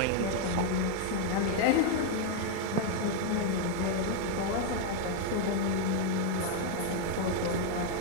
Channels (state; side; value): different; both; correlation 0.00